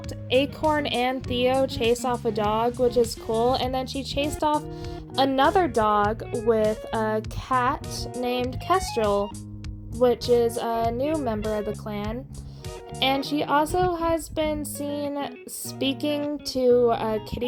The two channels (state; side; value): identical; both; correlation 1.00